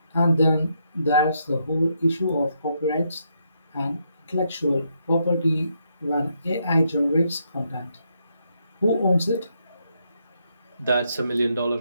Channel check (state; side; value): inverted; both; correlation -0.77